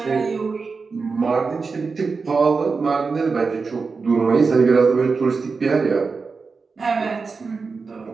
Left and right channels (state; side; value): quieter; left; 4.6 dB